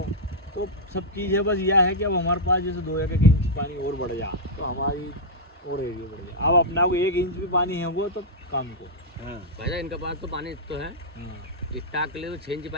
तो सब चीज़ है। बस यह है कि अब हमारे पास जैसे 2-1 इंच पानी और बढ़ जा तो हमारी और एरिया बढ़ जाए। अब अपना को 1 इंच भी पानी है वो तो काम को। हाँ भाई इनके पास तो पानी तो है। हाँ। स्टाक ले तो 6 इंच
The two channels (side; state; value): both; normal; correlation -0.06